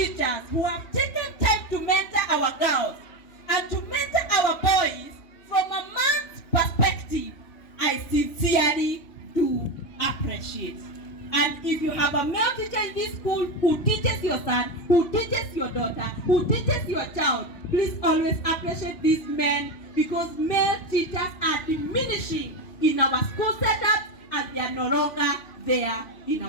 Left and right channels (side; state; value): right; late; 3.0 ms